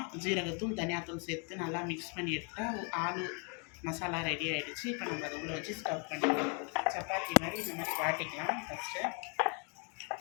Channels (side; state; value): right; quieter; 37.0 dB